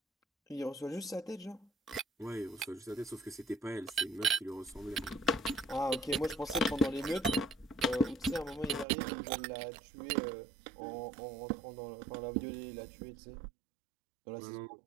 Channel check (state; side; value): drops out; left; at 8.8 s